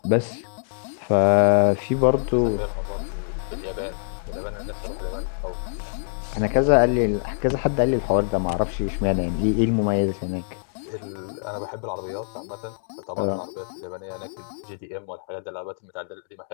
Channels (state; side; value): silent; right; digital silence